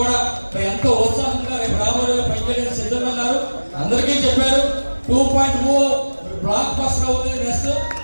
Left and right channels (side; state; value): both; inverted; correlation -1.00